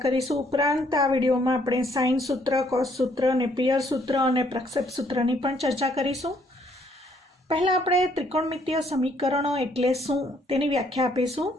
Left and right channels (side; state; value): both; normal; correlation 0.67